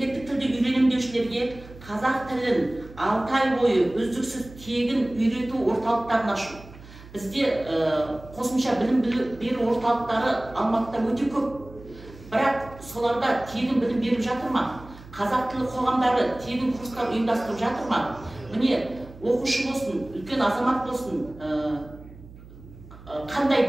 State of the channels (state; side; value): noise; right; hum, 19 dB below the sound